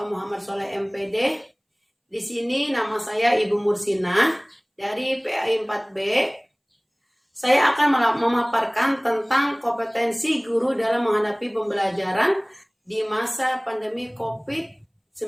Muhammad Soleh MPD. Di sini nama saya Ibu Mursina dari PAI 4B. Saya akan memaparkan tentang kompetensi guru dalam menghadapi pembelajaran di masa pandemi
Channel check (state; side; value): identical; both; correlation 1.00